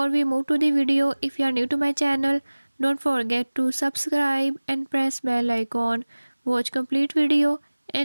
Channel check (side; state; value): both; inverted; correlation -1.00